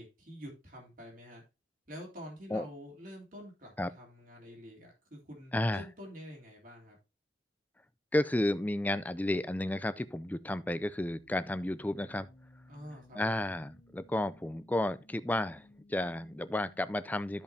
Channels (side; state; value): both; normal; correlation 0.86